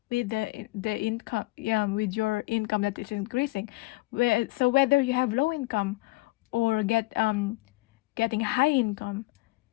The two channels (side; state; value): right; quieter; 21.7 dB